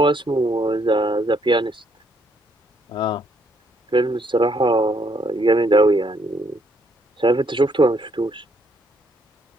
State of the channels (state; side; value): normal; both; correlation 0.71